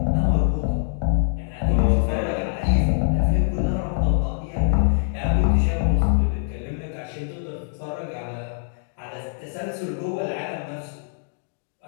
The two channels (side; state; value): right; silent; digital silence